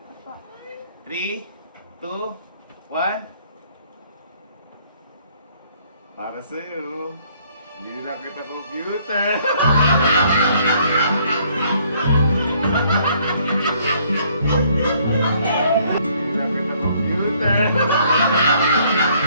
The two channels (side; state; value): both; inverted; correlation -0.64